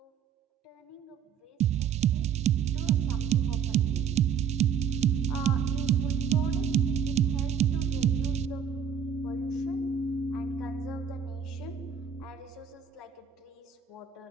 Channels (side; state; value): left; quieter; 7.7 dB